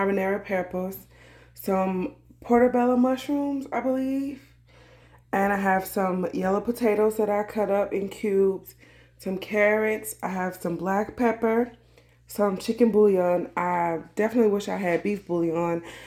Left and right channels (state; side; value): identical; both; correlation 1.00